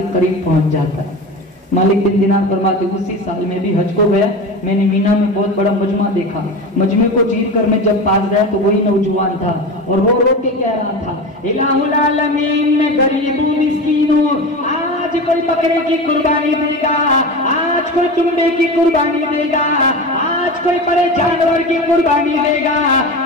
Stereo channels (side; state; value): both; normal; correlation 0.27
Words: قریب پہنچ جاتا. مالک بن دینار فرماتے اسی سال میں بھی حج کو گیا, میں نے مینا میں بہت بڑا مجمع دیکھا. مجمع کو چیر کر میں جب پاس گیا تو وہی نوجوان تھا اور رو رو کے کہہ رہا تھا الہ العالمین میں غریب ہوں مسکین ہوں, آج کوئی بکرے کی قربانی دے گا, آج کوئی چمڑے کی قربانی دے گا, آج کوئی بڑے جانور کی قربانی دے گا,